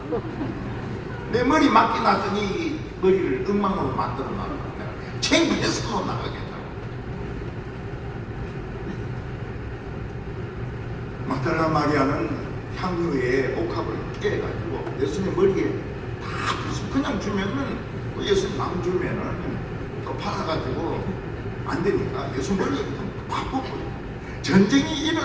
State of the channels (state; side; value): identical; both; correlation 1.00